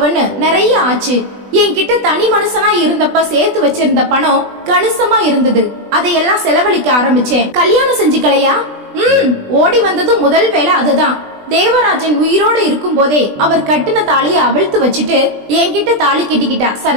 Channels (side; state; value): left; late; 20 ms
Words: நிறைய ஆச்சு. என்கிட்ட தனி மனுஷனா இருந்தப்ப சேர்த்து வச்சிருந்த பணம் கணிசமா இருந்தது. அதையெல்லாம் செலவழிக்க ஆரம்பிச்சேன். கல்யாணம் செஞ்சுக்கலையா? ஓடி வந்தது முதல் வேலை அதுதான். தேவராஜன் உயிரோடு இருக்கும் போதே அவர் கட்டின தாலிய அவிழ்த்து வச்சுட்டு என்கிட்ட தாலி கட்டிக்கிட்டா